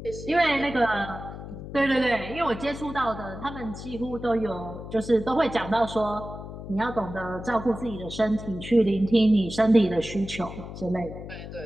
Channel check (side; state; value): left; noise; hum, 11 dB below the sound